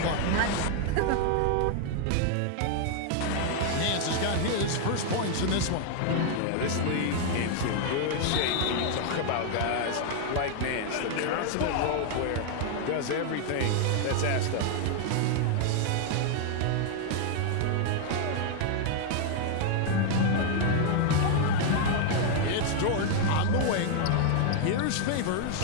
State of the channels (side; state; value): both; different; correlation 0.00